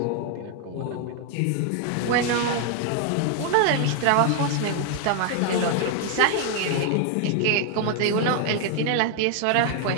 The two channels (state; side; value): different; both; correlation 0.00